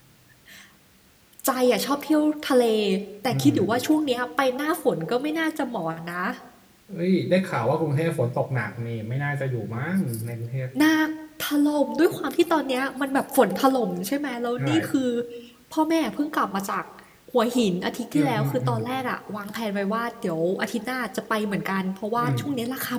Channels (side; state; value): both; identical; correlation 1.00